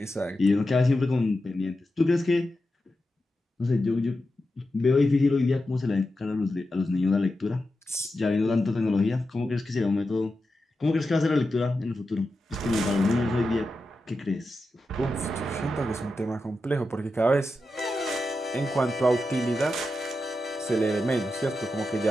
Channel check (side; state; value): both; normal; correlation 0.90